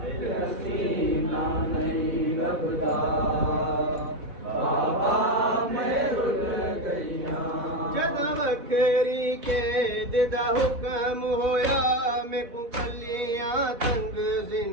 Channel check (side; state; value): left; late; 4.1 ms